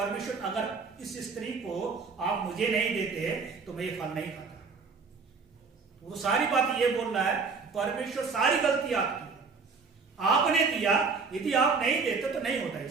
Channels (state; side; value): quieter; left; 4.9 dB